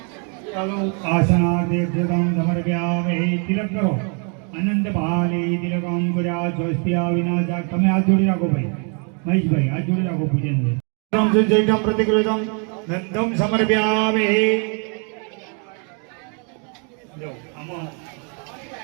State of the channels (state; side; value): quieter; left; 38.5 dB